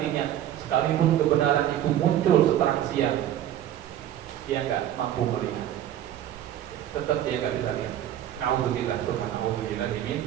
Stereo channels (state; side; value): quieter; left; 11.5 dB